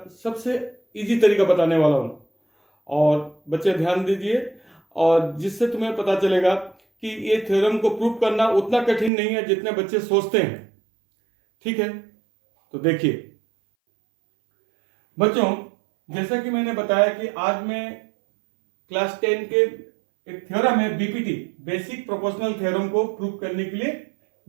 सबसे इजी तरीका बताने वाला हूं। और बच्चे ध्यान दीजिए, और जिससे तुम्हें पता चलेगा कि ये थ्योरम को प्रूव करना उतना कठिन नहीं है जितने बच्चे सोचते हैं। ठीक है, तो देखिए बच्चों, जैसा कि मैंने बताया कि आज मैं क्लास 10 के एक थ्योरम है बीपीटी, बेसिक प्रोपोर्शनल थ्योरम को प्रूव करने के लिए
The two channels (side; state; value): left; drops out; at 9.1 s